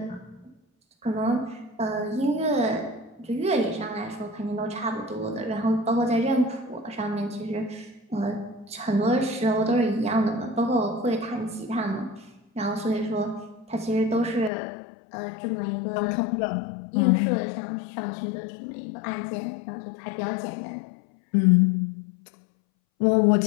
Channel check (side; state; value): right; drops out; at 14.5 s